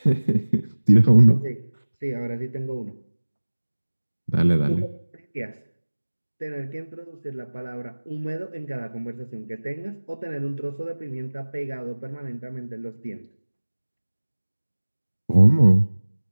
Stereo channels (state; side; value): inverted; both; correlation -1.00